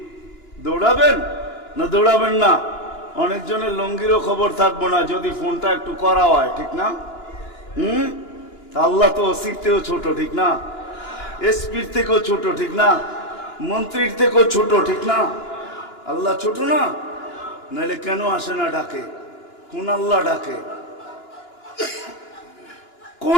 দৌড়াবেন না দৌড়াবেন না? অনেকজনের লঙ্গিরও খবর থাকবো না যদি ফোনটা একটু করা হয়, ঠিক না? আল্লাহ তো ওসির থেকেও ছোট, ঠিক না? এসপির থেকেও ছোট, ঠিক না? মন্ত্রীর থেকেও ছোট, ঠিক না? আল্লাহ ছোট না? নাহলে কেন আসে না ডাকে? কোন আল্লাহ ডাকে?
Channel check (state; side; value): late; right; 2.9 ms